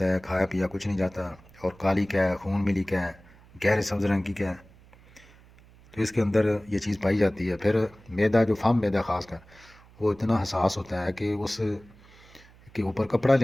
ہے کھایا پیا کچھ نہیں جاتا، اور کالی کیا ہے، خون ملی کیا ہے، گہرے سبز رنگ کی کیا ہے، تو اس کے اندر یہ چیز پائی جاتی ہے۔ پھر معدہ، جو فم معدہ خاص کر، وہ اتنا حساس ہوتا ہے کہ اس کے اوپر کپڑا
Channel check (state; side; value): noise; right; hum, 25 dB below the sound